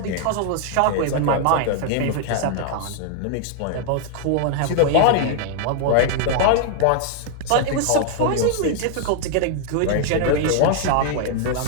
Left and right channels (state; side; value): different; both; correlation 0.00